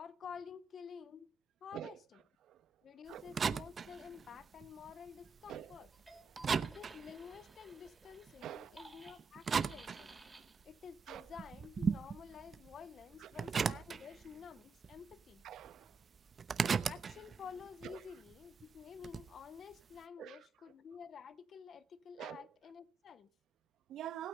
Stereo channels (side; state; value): left; quieter; 4.6 dB